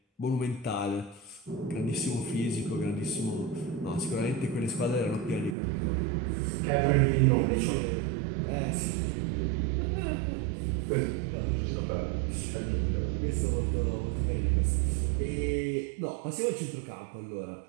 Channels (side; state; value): left; drops out; at 5.6 s